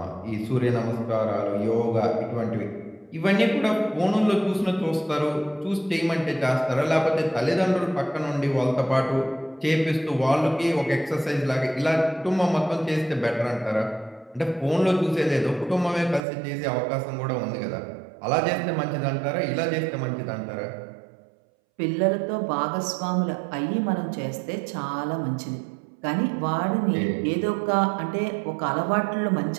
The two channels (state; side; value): drops out; left; at 16.2 s